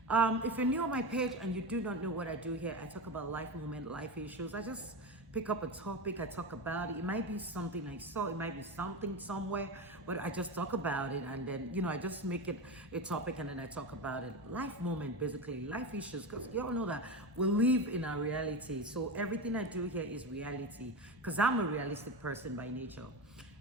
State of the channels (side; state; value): both; normal; correlation 0.21